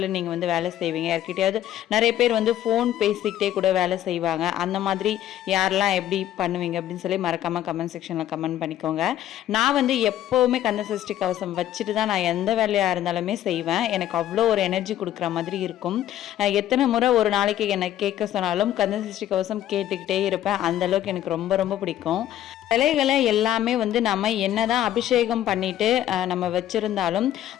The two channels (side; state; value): right; quieter; 12.1 dB